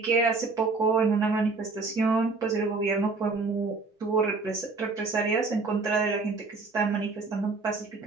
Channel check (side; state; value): left; quieter; 3.9 dB